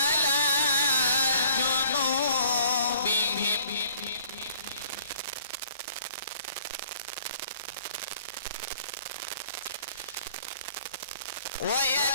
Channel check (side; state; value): both; inverted; correlation -0.57